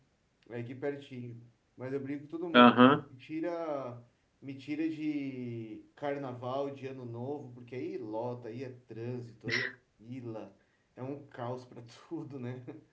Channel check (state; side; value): identical; both; correlation 1.00